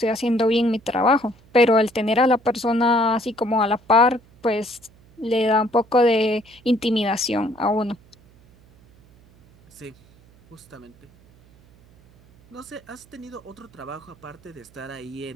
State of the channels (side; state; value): right; noise; hum, 28 dB below the sound